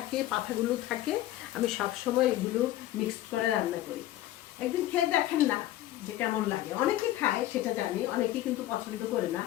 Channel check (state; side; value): quieter; right; 14.5 dB